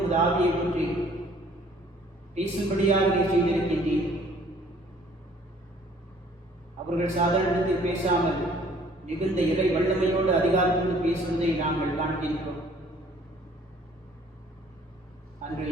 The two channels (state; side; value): normal; both; correlation 0.57